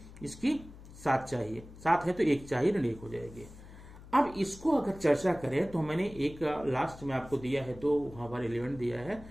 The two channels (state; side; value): noise; left; hum, 17 dB below the sound